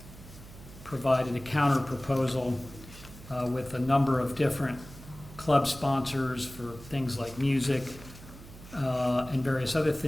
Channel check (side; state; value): right; noise; hum, 17 dB below the sound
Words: provided a counter proposal with a number of different club sponsors for things like music and various other